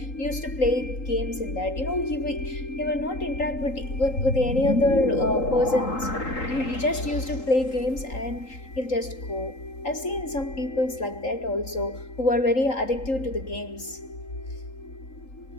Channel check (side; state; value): right; late; 3.8 ms